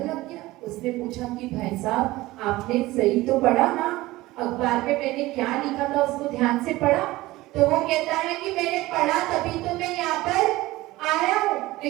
लग गया। उसने पूछा कि भाई साहब, आपने सही तो पढ़ा ना, अखबार में मैंने क्या लिखा था उसको ध्यान से पढ़ा? तो वो कहता है कि मैंने पढ़ा तभी तो मैं यहाँ पर आया हूँ,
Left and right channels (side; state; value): left; quieter; 18.6 dB